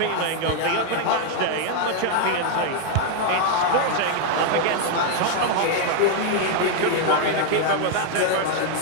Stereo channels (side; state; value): both; different; correlation 0.00